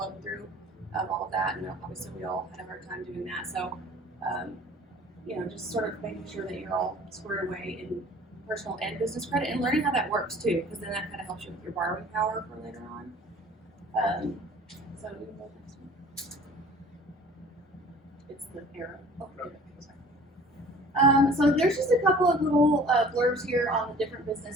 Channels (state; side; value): normal; both; correlation 0.48